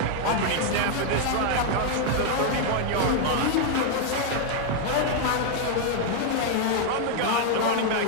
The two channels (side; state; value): both; different; correlation 0.00